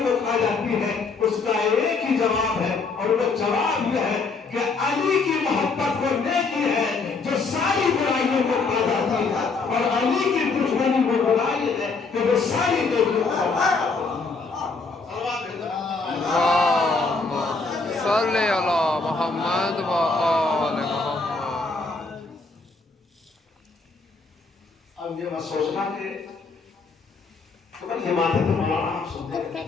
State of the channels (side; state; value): right; quieter; 4.2 dB